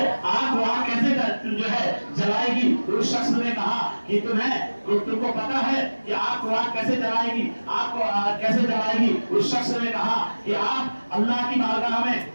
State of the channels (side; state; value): both; inverted; correlation -1.00